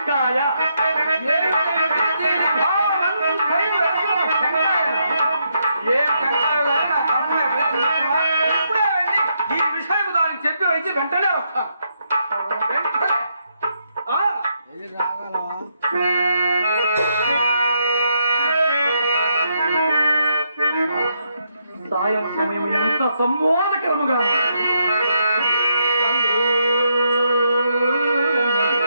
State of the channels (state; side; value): inverted; both; correlation -0.78